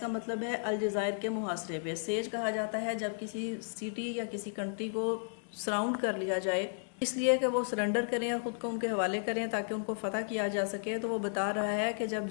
मतलब है अलजायर के मुहासरे पे। Says कहा जाता है जब किसी सिटी या किसी कंट्री को सराउंड कर लिया जाए, इसलिए कि वो सरेंडर करें और ख़ुद को उनके हवाले करें ताकि उनको फ़तह किया जा सके। तो वो बता रहा है कि जब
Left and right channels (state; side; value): silent; right; 55 dB below the other